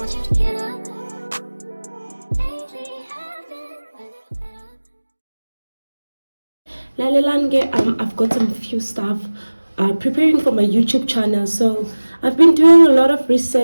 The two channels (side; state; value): both; inverted; correlation -1.00